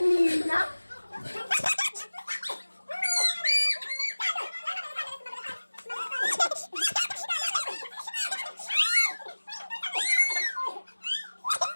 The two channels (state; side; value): inverted; both; correlation -1.00